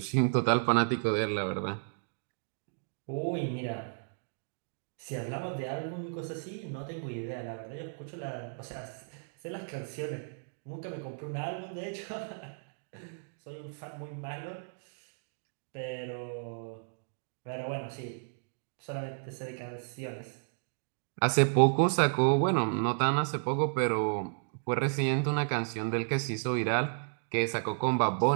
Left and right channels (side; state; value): left; silent; digital silence